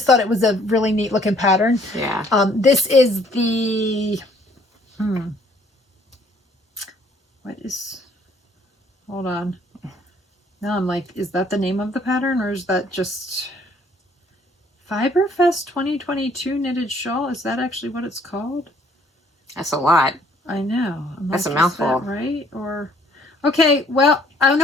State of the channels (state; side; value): normal; both; correlation 0.61